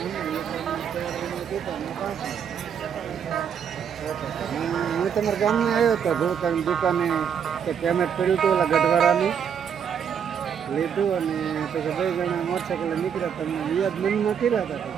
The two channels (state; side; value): quieter; left; 7.8 dB